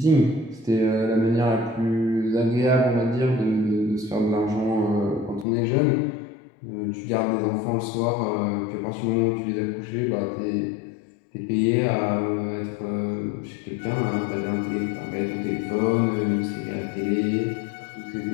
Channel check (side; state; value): right; drops out; at 5.5 s